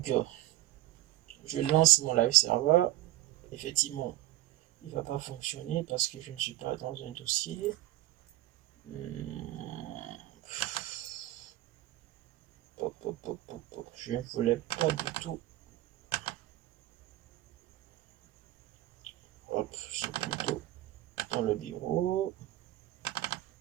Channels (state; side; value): quieter; left; 15.8 dB